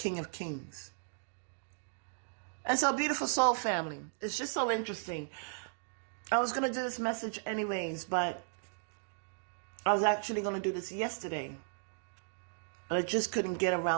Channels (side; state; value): left; silent; digital silence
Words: of Kings. And so, beautiful soul family, it's just so interesting. I was going to do this message anyways, but I was actually going to do this yesterday, but I just couldn't get